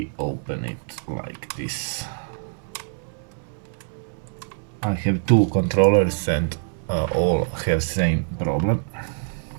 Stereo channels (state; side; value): silent; left; digital silence